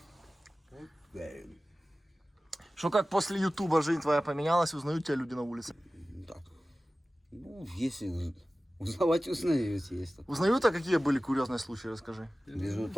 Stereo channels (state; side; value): normal; both; correlation 0.96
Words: Что, как после Ютуба жизнь твоя поменялась, узнают тебя люди на улице? Так. Ну, если узнавать узнаете, есть. Узнают, а какие были курьезные случаи, расскажи. Везу